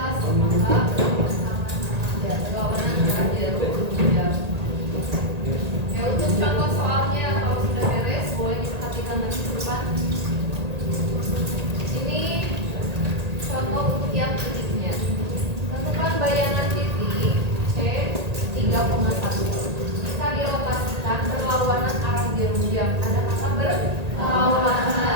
maka ya berlawanan arah jarum jam. Ya untuk contoh soalnya kalau sudah beres boleh diperhatikan nanti ke depan. Ini contoh untuk yang titiknya. Tentukan bayangan titik C 3,1. Jika dirotasikan berlawanan arah jarum jam. Ada kata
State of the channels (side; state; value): left; late; 1.8 ms